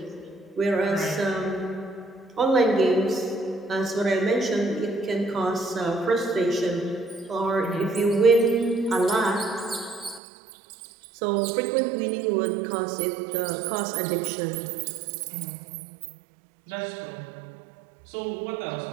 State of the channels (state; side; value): drops out; left; at 10.2 s